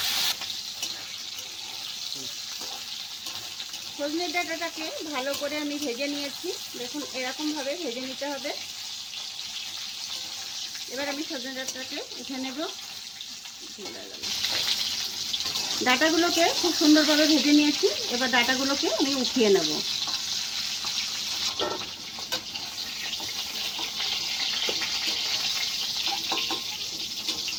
সজনে ডাঁটাটাকে ভালো করে আমি ভেজে নিয়েছি। দেখুন, এরকমভাবে ভেজে নিতে হবে। এবার আমি সজনে ডাঁটাটাকে উঠে নেব। ডাঁটাগুলোকে খুব সুন্দরভাবে ভেজে নিয়েছি। এবার ডাঁটাগুলোকে আমি উঠিয়ে নেব।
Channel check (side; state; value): both; identical; correlation 1.00